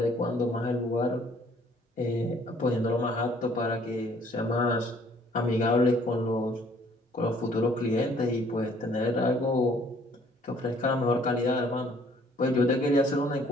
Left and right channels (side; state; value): both; normal; correlation 0.60